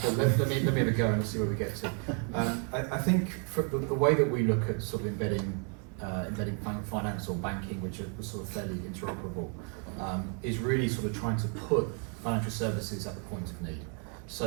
let me have a go and see where we get to. I think for the way that we look at sort of embedding finance or banking, which are sort of fairly interoperable, is really sort of trying to put financial services at the point of need.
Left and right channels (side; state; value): left; quieter; 39.2 dB